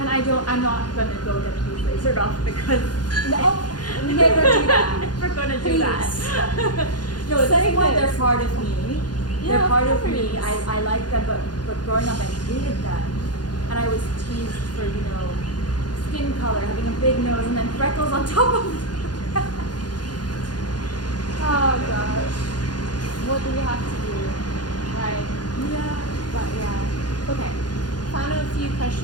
I'm not gonna go get the lasered off because No, never do that. I'm never gonna do Please. that. No, at Say this point this. they're part of me. Yeah, They're part of course. me. I like them, but growing up I hated them. And I was teased for, skin color, having a big nose and then freckles on top of it. Oh gosh. What do we have to do? Right. Yeah. But yeah. Okay. Final few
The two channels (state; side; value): late; right; 0.70 ms